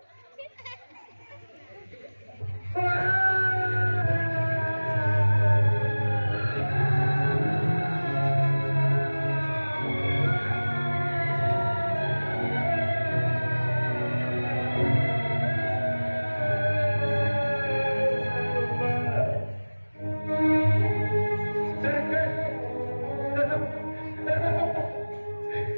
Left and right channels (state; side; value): inverted; both; correlation -1.00